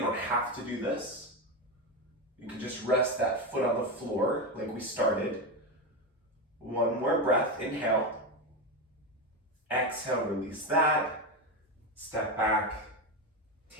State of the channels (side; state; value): both; normal; correlation 0.14